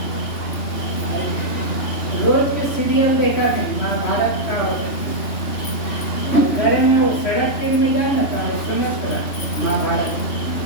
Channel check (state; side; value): late; right; 3.1 ms